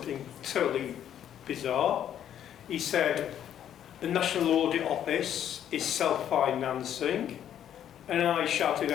totally bizarre. He said, the National Audit Office is self-financing, and I shouted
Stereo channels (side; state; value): right; quieter; 10.1 dB